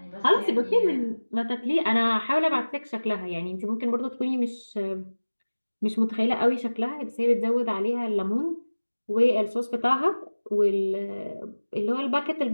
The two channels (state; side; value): inverted; both; correlation -1.00